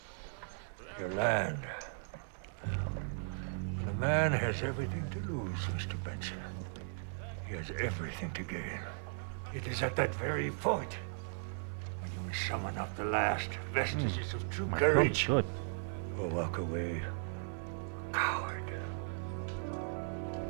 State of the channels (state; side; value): silent; left; 53 dB below the other